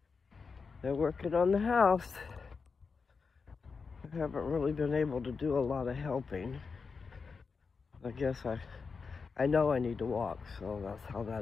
They're working on the house. I haven't really been able to do a lot of helping. I guess I know I need to walk, so that's how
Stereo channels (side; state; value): right; quieter; 5.0 dB